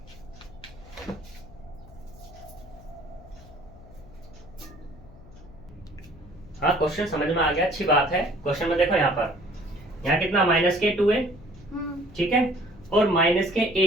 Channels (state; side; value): noise; left; hum, 20 dB below the sound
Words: हाँ, क्वेश्चन समझ में आ गया, अच्छी बात है। क्वेश्चन में देखो यहाँ पर, यहाँ कितना माइनस के 2 है, ठीक है, और माइनस के